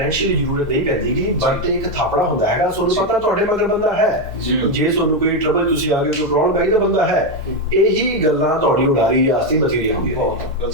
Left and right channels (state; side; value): normal; both; correlation 0.06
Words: ਜ਼ਰੂਰਤ ਨਹੀਂ ਪੈਂਦੀ ਕਿ ਬਟ ਇੱਕ ਥਾਪੜਾ ਹੁੰਦਾ ਹੈਗਾ, ਤੁਹਾਨੂੰ ਪਤਾ ਤੁਹਾਡੇ ਮਗਰ ਬੰਦਾ ਹੈ, ਜੇ ਤੁਹਾਨੂੰ ਕੋਈ ਟਰਬਲ ਤੁਸੀਂ ਆ ਗਏ ਕੋਈ ਪ੍ਰੋਬਲਮ ਪੈ ਗਈ ਤਾਂ ਬੰਦਾ ਹੈ। ਇਹੀ ਗੱਲਾਂ ਤੁਹਾਡੀ ਉਡਾਰੀ ਵਾਸਤੇ ਬਥੇਰੀਆਂ ਹੁੰਦੀਆਂ।